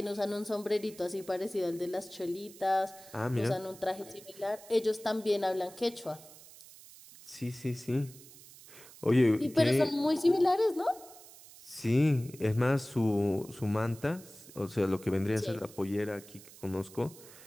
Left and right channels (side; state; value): right; noise; hiss, 20 dB below the sound